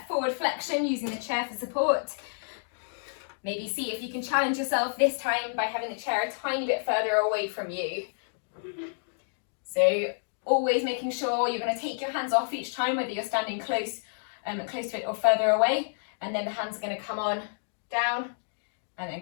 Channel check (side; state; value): right; silent; digital silence